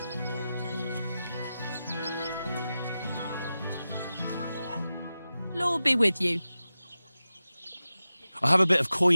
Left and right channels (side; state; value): both; inverted; correlation -0.93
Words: Lord be with you. I have a bit of